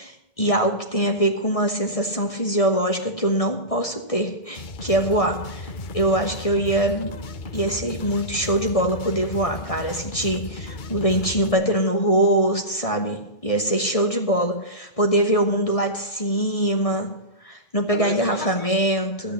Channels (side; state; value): right; late; 1.6 ms